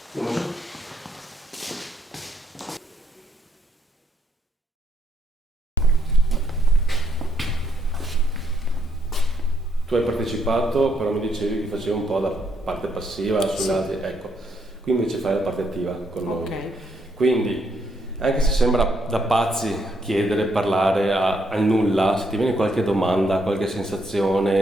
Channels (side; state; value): both; normal; correlation 0.74